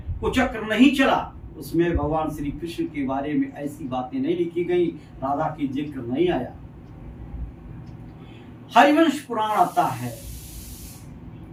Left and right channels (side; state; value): both; identical; correlation 1.00